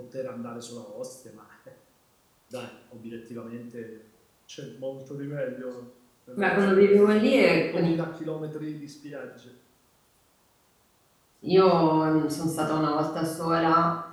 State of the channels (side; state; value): both; identical; correlation 1.00